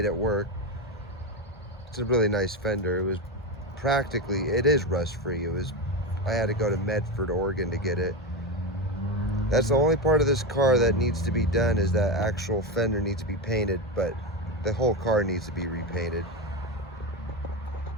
it work. It's a really nice fender. It was practically, it is rust free. I had to go to Medford, Oregon to get it. That's the only part of this car that needs to be done, is that actual fender needs to be painted, but the whole car needs to be repainted.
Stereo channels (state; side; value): normal; both; correlation 0.15